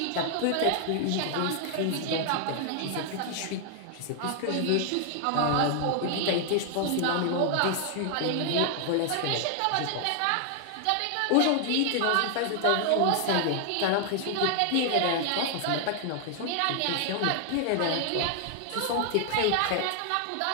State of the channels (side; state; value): both; different; correlation 0.00